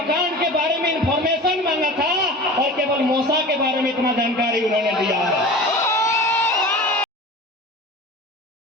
के बारे में इंफॉर्मेशन मांगा था, और केवल मौसा के बारे में इतना जानकारी उन्होंने दिया है।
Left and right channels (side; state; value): both; normal; correlation 0.36